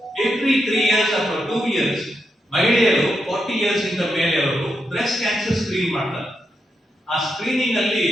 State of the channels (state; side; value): normal; both; correlation 0.84